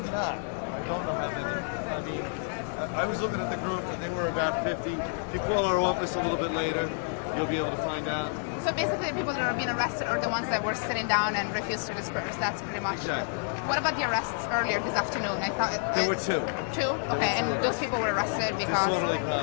not. I don't know how many. I mean, I was looking at the group and they were about 50. If you call our office a little bit later, you'll be able to find out. So basically the people that are being arrested are the ones that were sitting down and refused to disperse. That's pretty much it. What about the arrests earlier this afternoon? I thought There were two. Two? Okay, and those people were arrested because... Disorderly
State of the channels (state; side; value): silent; right; 58 dB below the other